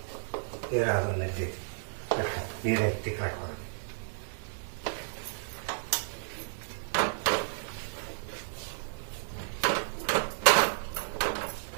ನೀರು ಎತ್ತಿ ಕಟ್ಕೊಂಡು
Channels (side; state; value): left; silent; digital silence